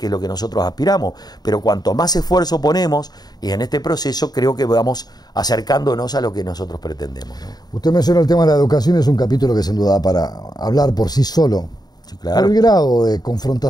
es lo que nosotros aspiramos, pero cuanto más esfuerzo ponemos, y en este proceso creo que vamos acercándonos a lo que nosotros pretendemos, ¿no? Usted menciona el tema de la educación, es un capítulo que sin duda da para hablar por sí solo. Sí, claro. Por el grado de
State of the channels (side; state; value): right; late; 0.19 ms